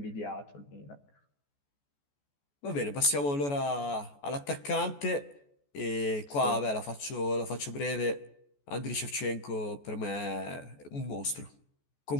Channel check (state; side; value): late; right; 14 ms